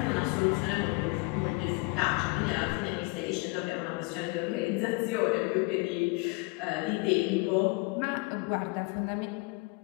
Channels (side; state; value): right; quieter; 26.8 dB